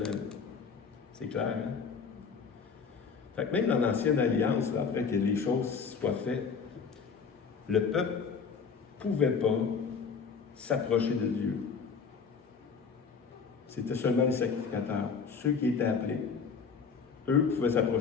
C'est clair, hein? Fait que même dans l'Ancienne Alliance, là, après que les choses soient faites, le peuple ne pouvait pas s'approcher de Dieu. C'était seulement les sacrificateurs, ceux qui étaient appelés. Eux pouvaient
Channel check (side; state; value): right; quieter; 5.7 dB